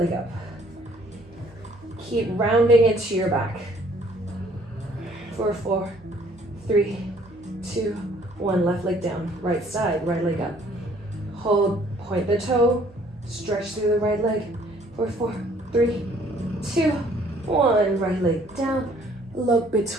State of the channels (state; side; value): normal; both; correlation 0.60